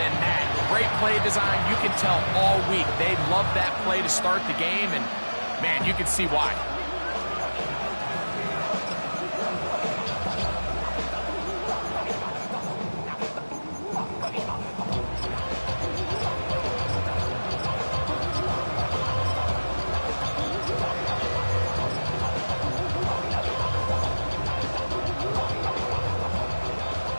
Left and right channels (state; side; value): inverted; both; correlation -1.00